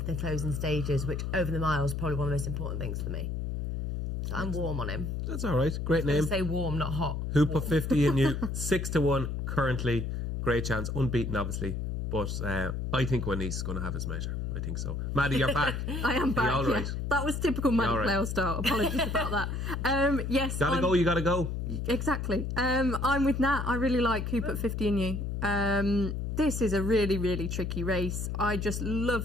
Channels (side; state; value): left; noise; hum, 3 dB below the sound